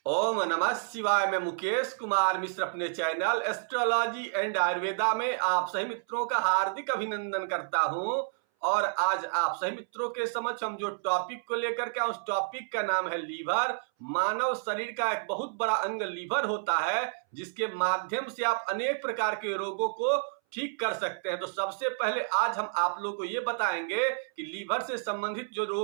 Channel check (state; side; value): silent; left; 58 dB below the other